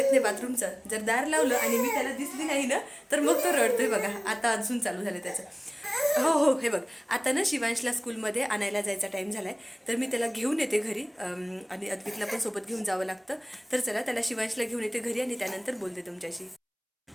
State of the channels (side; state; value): both; identical; correlation 1.00